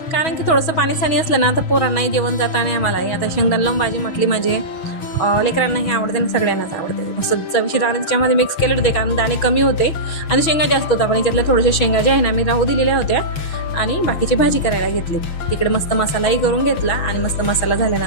कारण की थोडंसं पाणी असलं ना तर पोरांनाही जेवण जातं आणि आम्हालाही. आता शेंगदाणा लावून भाजी म्हटली म्हणजे लेकरांनाही आवडते आणि सगळ्यांनाच आवडते. मस्त चवीशी दाणे त्याच्यामध्ये मिक्स केले होते कारण दाणे कमी होते आणि शेंगा जास्त होता. पण याच्यातल्या थोड्याशा शेंगा ज्या आहे ना मी राहू दिलेल्या होत्या आणि बाकीची भाजी करायला घेतली. तिकडे मस्त मसालाही करून घेतला आणि मस्त मसाला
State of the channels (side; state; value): right; late; 6.2 ms